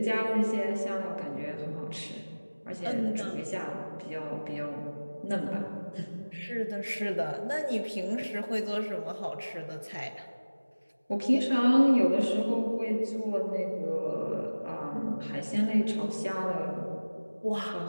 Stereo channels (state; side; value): inverted; both; correlation -1.00